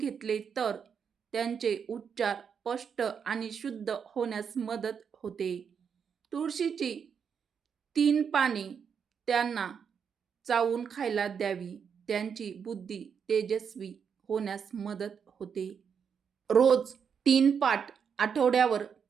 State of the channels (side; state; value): left; quieter; 6.9 dB